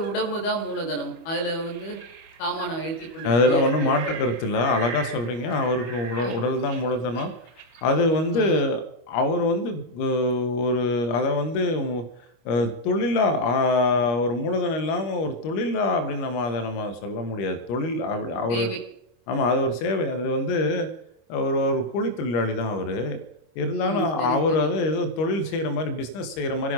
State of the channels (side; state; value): right; late; 25 ms